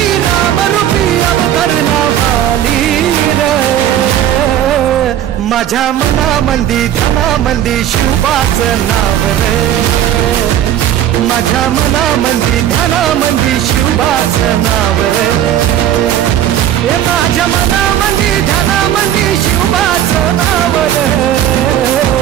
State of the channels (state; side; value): quieter; left; 11.1 dB